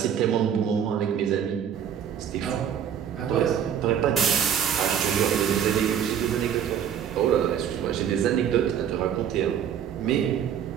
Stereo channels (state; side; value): quieter; left; 8.8 dB